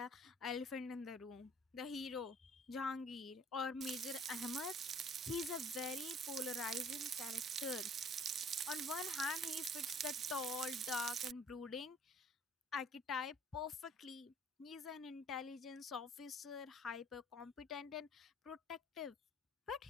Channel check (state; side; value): normal; both; correlation 0.54